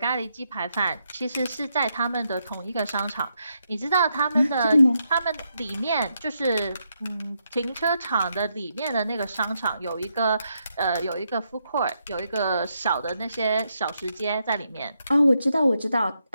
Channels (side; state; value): both; inverted; correlation -0.80